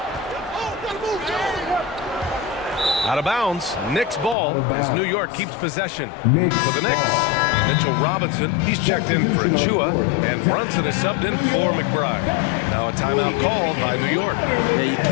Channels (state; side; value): drops out; right; at 4.4 s